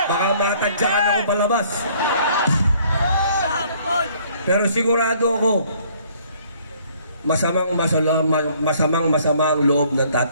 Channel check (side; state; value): both; inverted; correlation -0.61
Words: baka matadyakan ako palabas. Pero sigurado ako, masamang loob ng